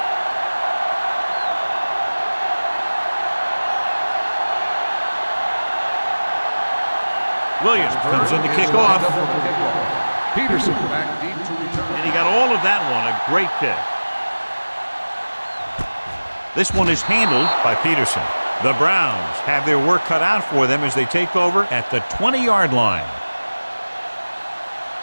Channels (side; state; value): both; inverted; correlation -1.00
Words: Williams comes in to kick off. Peterson back deep to return. And he got all of that one. A great kick. This one is handled by Peterson. The Browns have their work cut out for them as they take over at the 20-yard line.